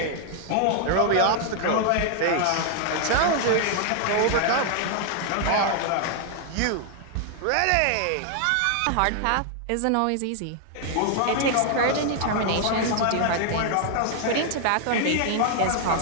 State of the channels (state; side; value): different; both; correlation 0.00